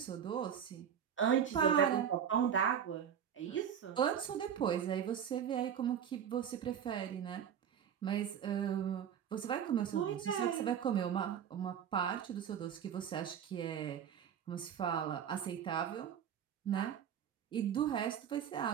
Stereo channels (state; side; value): quieter; left; 8.6 dB